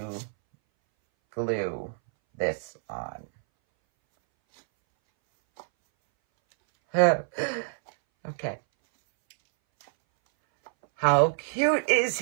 glue this on. Okay. How cute is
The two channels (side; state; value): left; silent; 60 dB below the other